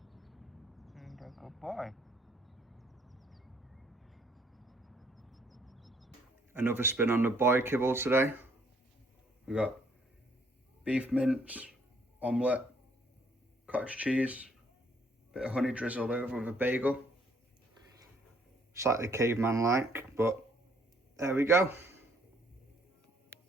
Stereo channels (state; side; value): normal; both; correlation 0.65